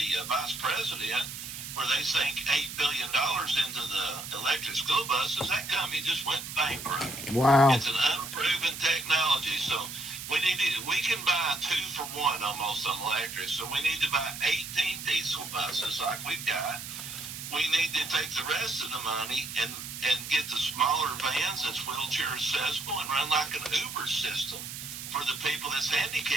vice president, where they sank $8 billion into the electric school buses, that company just went bankrupt. Wow. It's an unproven technology, so we can buy 2 for 1 almost on electric. So we need to buy 18 diesel buses like we've got. We need to take the rest of the money and get the smaller vans that's wheelchair accessible and run like an Uber system for the people that's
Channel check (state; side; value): noise; right; hiss, 9 dB below the sound